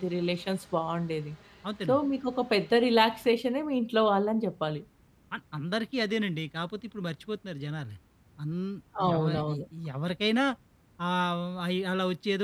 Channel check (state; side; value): identical; both; correlation 1.00